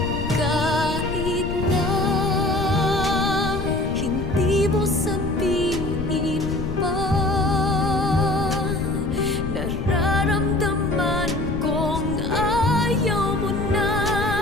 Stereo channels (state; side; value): noise; left; rumble, 5 dB below the sound